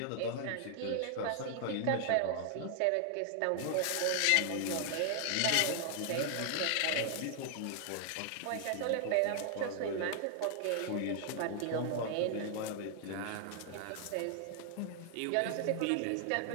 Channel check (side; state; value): both; different; correlation 0.00